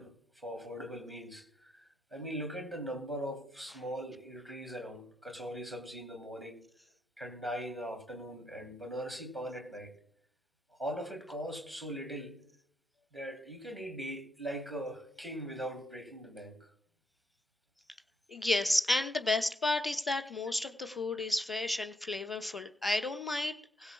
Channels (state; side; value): normal; both; correlation 0.78